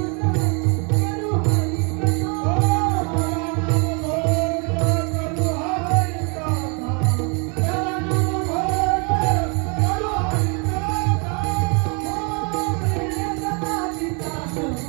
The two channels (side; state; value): left; quieter; 33.9 dB